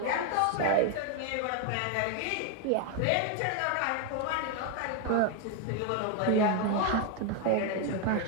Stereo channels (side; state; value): both; different; correlation 0.01